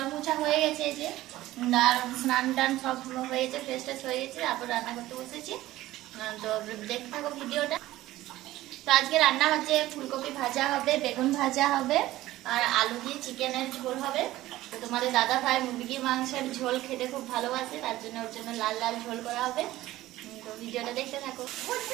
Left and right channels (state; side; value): quieter; left; 16.1 dB